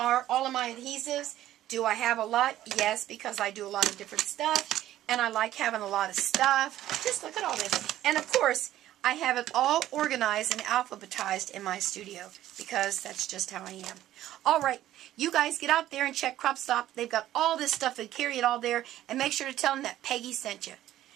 all of my adhesives. Do I have a lot? Yes, because I do a lot of different stuff, and I like having a lot of stuff. Just look at all this. And of course, I have it all organized and alphabetized in my studio because that's just how I am. All right, you guys get out there and check Crop Stop. They've got all this stuff and carry it all there, and make sure to tell them that Peggy sent you.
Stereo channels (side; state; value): left; quieter; 13.4 dB